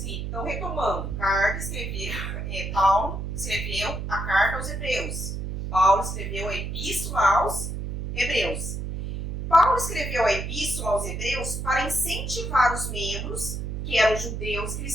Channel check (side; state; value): right; noise; hum, 5 dB below the sound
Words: Então, retomando, Paulo escreveu a carta aos Hebreus. Paulo escreveu a epístola aos Hebreus. Paulo escreveu a epístola aos Hebreus para incentivar os membros, que eram judeus